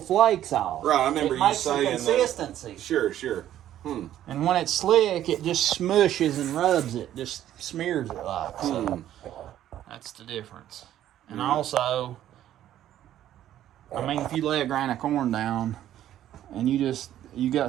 off. Right, I remember you saying the consistency. Sure. And when it's slick, it just smushes and rubs it, just smears it like. So that's the difference. And also, I mean, if you lay a grain of corn down and you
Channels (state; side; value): quieter; left; 12.0 dB